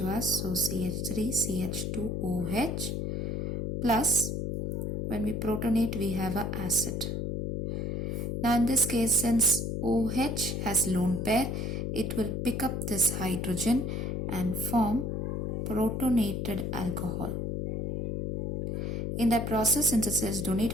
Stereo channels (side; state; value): left; noise; hum, 2 dB below the sound